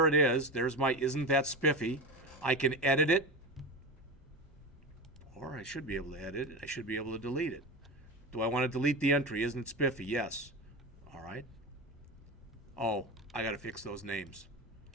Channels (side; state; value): both; normal; correlation 0.23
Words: it is. There's my isn't that spiffy. I can edit it. Or I should be able to edit it. I should be able to delete it. Do I want to delete the entry? Isn't it spiffy? Yes. All right. Oh, I got to fix those names.